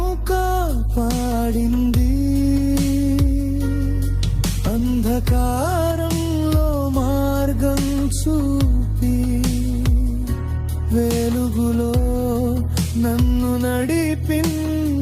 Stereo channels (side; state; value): both; identical; correlation 1.00